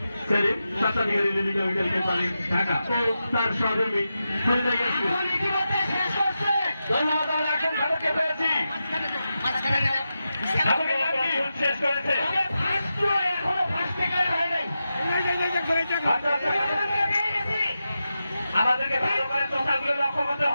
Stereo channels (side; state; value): both; inverted; correlation -0.90